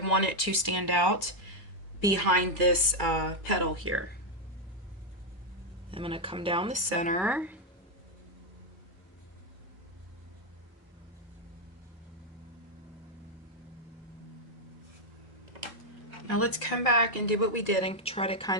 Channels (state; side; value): normal; both; correlation 0.02